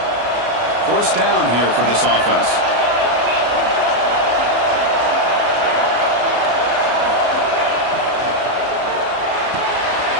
First down here for this offense.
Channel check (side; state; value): left; late; 33 ms